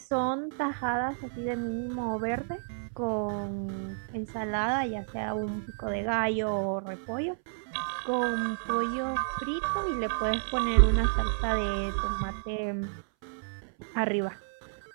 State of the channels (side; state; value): left; silent; 57 dB below the other